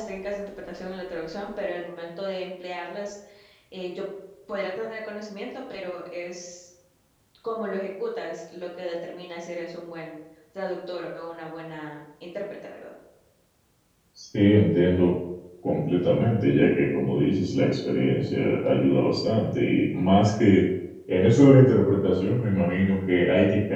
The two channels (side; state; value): both; identical; correlation 1.00